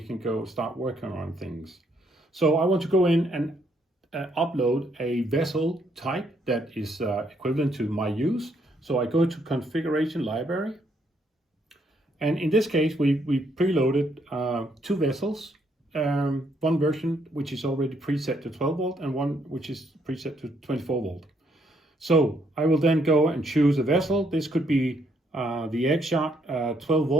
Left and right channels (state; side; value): normal; both; correlation 0.72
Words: can go start working on things. So I want to go in and upload a vessel type that is equivalent to my use. So I go to configuration library, and in this case we preloaded 2 vessels, one version which is already preset to 12 volt and one which is preset to 24 volt. So I will then go and choose a vessel. This could be the Axiom 12